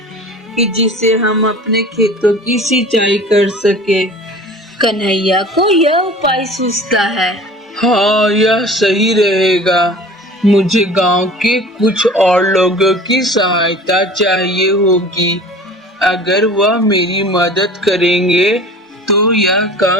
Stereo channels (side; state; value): both; normal; correlation 0.42